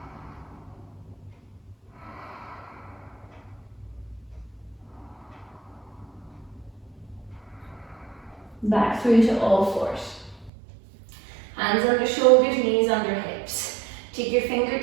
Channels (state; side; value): drops out; left; at 10.5 s